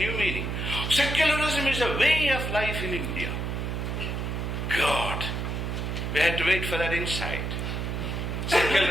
meaning? Secularism is a way of life in India. God, we had to wait for that insight.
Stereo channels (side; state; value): right; noise; hum, 2 dB below the sound